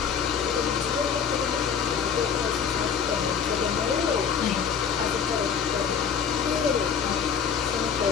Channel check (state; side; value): quieter; right; 7.0 dB